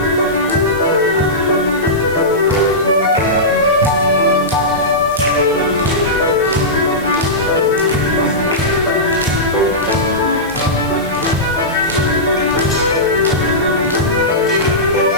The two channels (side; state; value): left; noise; hiss, 21 dB below the sound